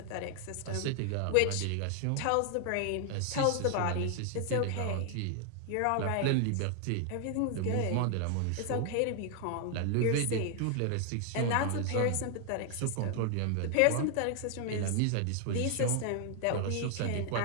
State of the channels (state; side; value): different; both; correlation 0.00